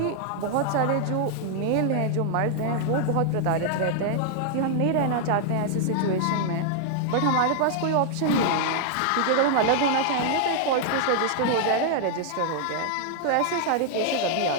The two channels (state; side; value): different; both; correlation -0.01